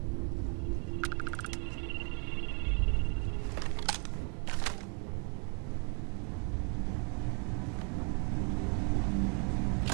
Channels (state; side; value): quieter; left; 38.2 dB